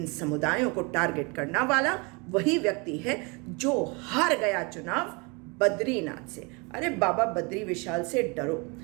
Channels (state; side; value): quieter; left; 29.8 dB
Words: समुदायों को टारगेट करने वाला वही व्यक्ति है जो हार गया चुनाव बद्रीनाथ से। अरे बाबा बद्री विशाल से डरो।